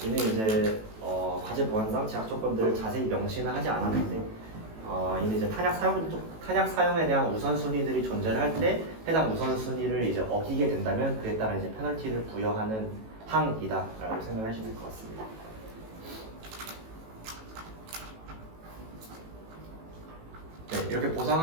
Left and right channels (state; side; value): late; left; 18 ms